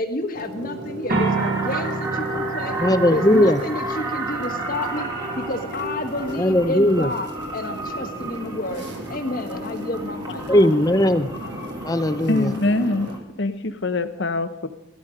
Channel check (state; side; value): normal; both; correlation 0.60